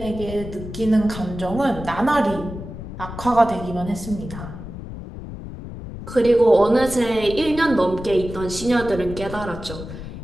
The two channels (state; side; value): noise; left; rumble, 10 dB below the sound